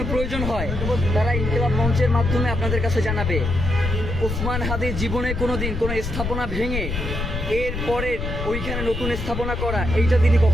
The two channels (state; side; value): noise; left; rumble, 4 dB below the sound